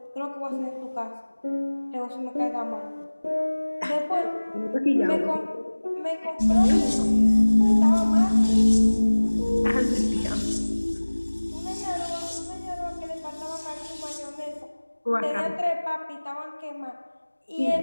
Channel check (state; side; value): inverted; both; correlation -1.00